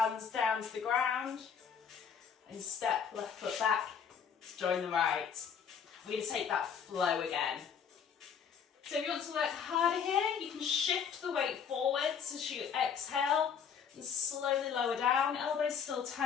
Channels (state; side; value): quieter; right; 7.2 dB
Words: down to the ground. And step left foot back to join the right. We're going to take that flow again. So if you want to work harder here, you can shift the weight forwards as you exhale and slowly lower down. Elbows still